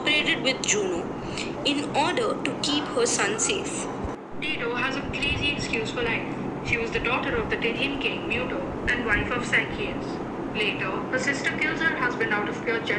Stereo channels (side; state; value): both; identical; correlation 1.00